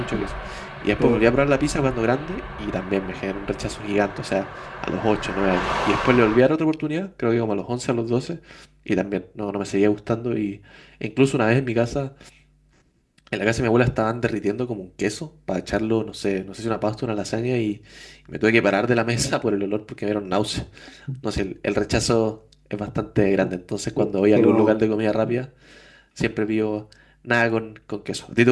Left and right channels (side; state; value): both; identical; correlation 1.00